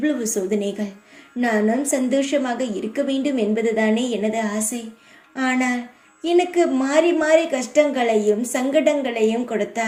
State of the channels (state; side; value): identical; both; correlation 1.00